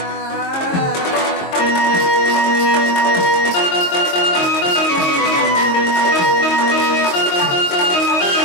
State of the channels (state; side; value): late; right; 22 ms